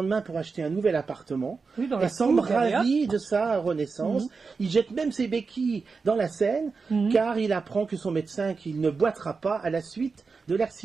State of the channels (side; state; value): left; quieter; 4.7 dB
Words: pour acheter un nouvel appartement. Et semble ravi de sa renaissance. Il jette même ses béquilles dans la Seine, car il apprend que son médecin qu'il ne boitera pas à la suite de